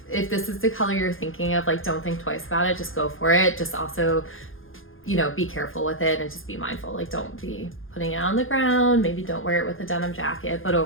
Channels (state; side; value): late; right; 0.59 ms